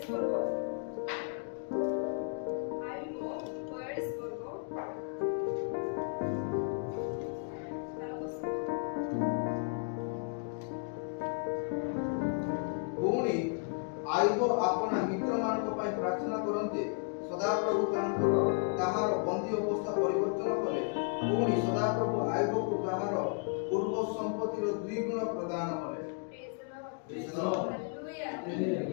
ପର୍ବ ପୁଣି ଆୟୁବ ଆପଣା ମିତ୍ରମାନଙ୍କ ପାଇଁ ପ୍ରାର୍ଥନା କରନ୍ତେ ସଦାପ୍ରଭୁ ତାହାର ବନ୍ଦୀ ଅବସ୍ଥା ପରିବର୍ତ୍ତନ କଲେ। ପୁଣି ସଦାପ୍ରଭୁ ଆୟୁବକୁ ତାହାର ପୂର୍ବ ସମ୍ପତ୍ତିର 2 ଗୁଣ ପ୍ରଦାନ କଲେ।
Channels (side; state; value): right; quieter; 38.8 dB